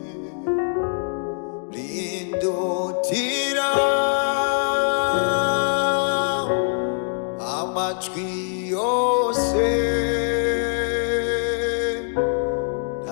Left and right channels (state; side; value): silent; right; 63 dB below the other